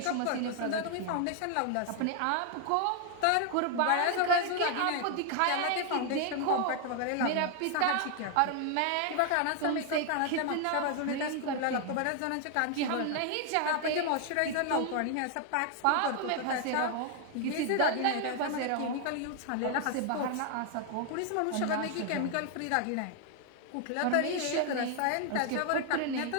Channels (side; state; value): both; different; correlation 0.00